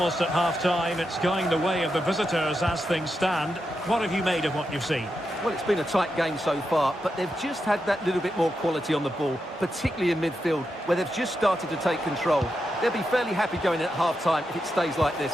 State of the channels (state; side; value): normal; both; correlation 0.86